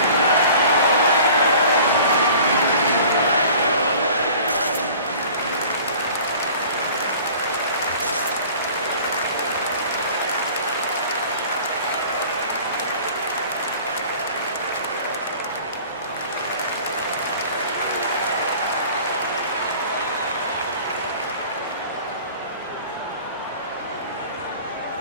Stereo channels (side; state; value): both; inverted; correlation -0.45